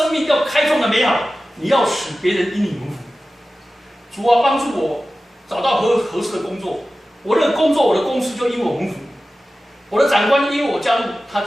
命要开创的美好，你要使别人因你蒙福。主啊，帮助我找到合适的工作，我的工作我的公司就因我蒙福，我的长官因为我加入，他就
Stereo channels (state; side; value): normal; both; correlation 0.95